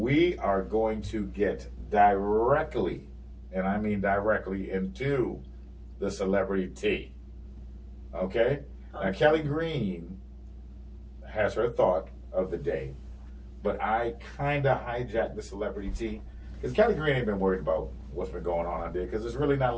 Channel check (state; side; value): identical; both; correlation 1.00